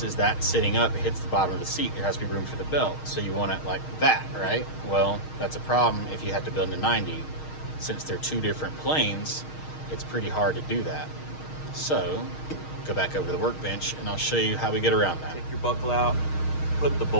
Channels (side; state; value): right; late; 6.4 ms